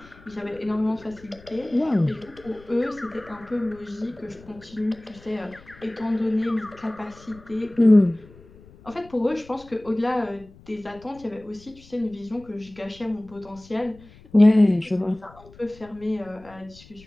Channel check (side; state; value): left; noise; rumble, 23 dB below the sound